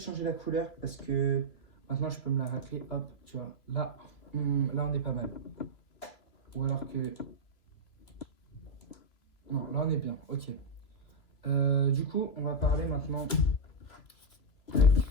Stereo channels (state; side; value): late; right; 3.1 ms